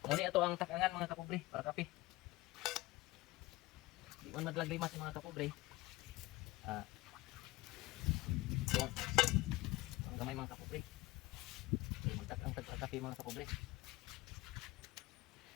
Ngunit ito ang takangan mga kapobre para kape. Di man madlaglimas si mga kapobre. Ang gamay mga kapobre. Magtakang tagkape mga kapobre.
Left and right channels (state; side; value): quieter; right; 19.2 dB